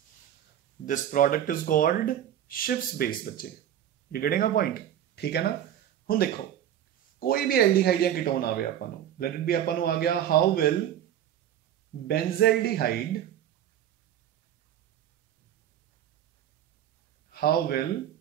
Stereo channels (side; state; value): left; quieter; 10.7 dB